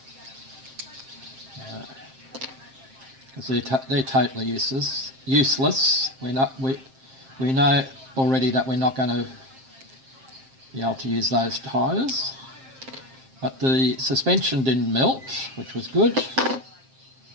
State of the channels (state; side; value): late; left; 7.6 ms